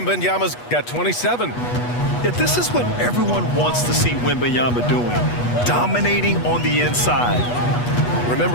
got 27. Yeah, this is what everyone wants to see Wembanyama doing, dominating on the inside.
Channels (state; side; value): late; right; 8.2 ms